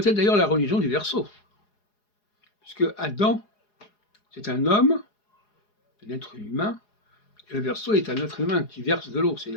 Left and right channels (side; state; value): right; late; 4.8 ms